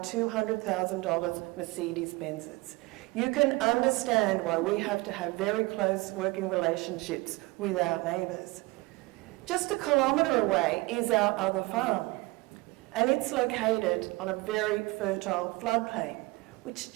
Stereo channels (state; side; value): quieter; left; 22.9 dB